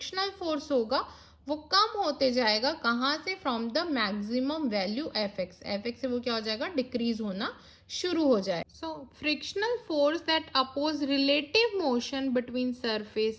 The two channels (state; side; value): identical; both; correlation 1.00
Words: फोर्स होगा वो कम होते जाएगा, कहाँ से, from the maximum value F x से वो क्या हो जाएगा, डिक्रीज होना शुरू हो जाए। So frictional force that oppose relative motion between